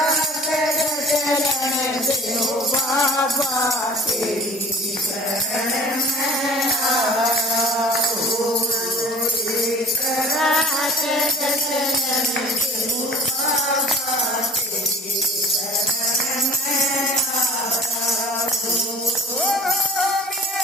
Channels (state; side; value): normal; both; correlation 0.45